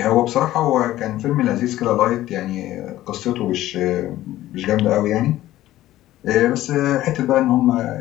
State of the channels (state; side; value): quieter; right; 14.7 dB